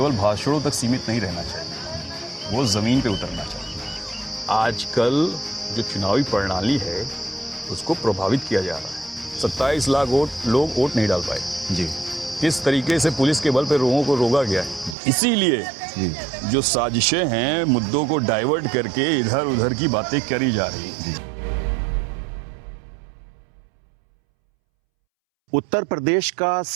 भाषणों तक सीमित नहीं रहना चाहिए, वो ज़मीन पे उतरना चाहिए। आजकल जो चुनावी प्रणाली है उसको प्रभावित किया जा रहा है। 27 लाख लोग वोट नहीं डाल पाए जी। किस तरीके से पुलिस के बल पे लोगों को रोका गया है। इसीलिए जो साजिशें हैं, मुद्दों को डाइवर्ट करके इधर उधर की बातें करी जा रही हैं। उत्तर प्रदेश का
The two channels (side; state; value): left; drops out; at 15.0 s